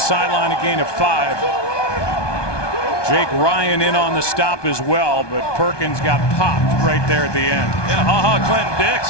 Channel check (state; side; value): late; right; 1.2 ms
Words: a gain of 5. Jake Ryan in on the stop as well, but Perkins got popped right there at the end. Yeah, Clinton